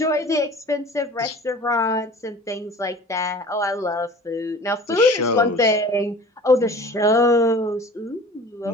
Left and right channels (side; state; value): both; normal; correlation 0.44